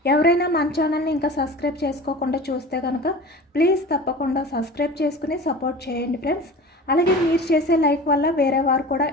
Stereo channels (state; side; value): normal; both; correlation 0.37